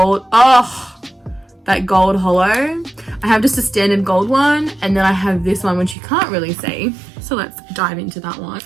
that gold hollow. I have just a standard gold one, and then I have this one which you can't really see. So let's dive into that one.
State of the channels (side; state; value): left; drops out; at 6.0 s